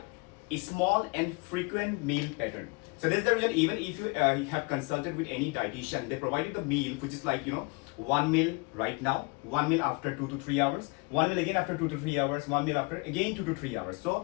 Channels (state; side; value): quieter; right; 29.1 dB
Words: a small and frequent meal pattern. So that's the reason, even if you have consulted with any dietitian, they provide you the meal, which is like, one meal right now, one meal after 2 to 3 hours, one meal again after 2 to 3 hours, one meal after again 2 to 3 hours.